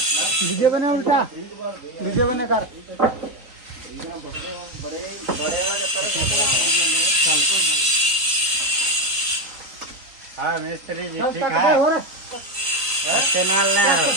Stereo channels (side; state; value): left; late; 3.9 ms